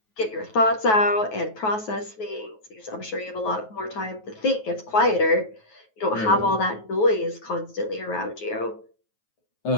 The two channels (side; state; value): right; late; 9.3 ms